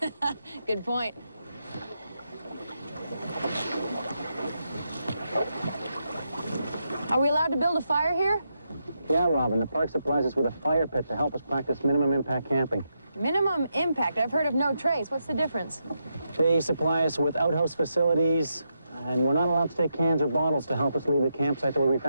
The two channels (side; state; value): both; inverted; correlation -0.83